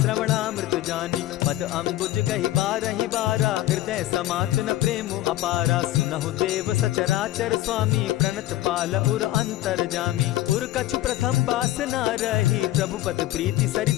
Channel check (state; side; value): quieter; right; 15.3 dB